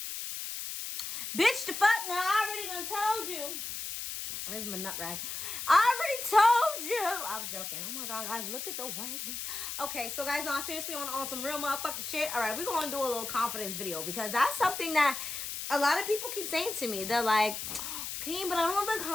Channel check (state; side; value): noise; left; hiss, 6 dB below the sound